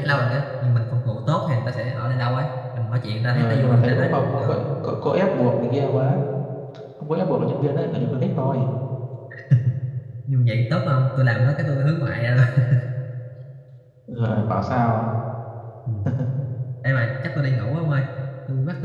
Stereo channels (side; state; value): both; identical; correlation 1.00